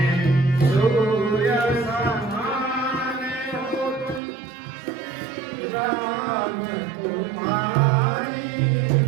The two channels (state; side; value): drops out; left; at 4.2 s